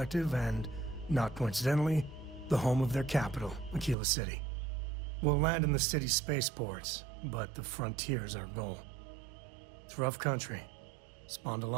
and, not coincidentally, the home of their capital, Aquila City. We'll land in the city's spaceports, but the frontier's our goal. It's rough country. Spawned a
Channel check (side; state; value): left; drops out; at 4.0 s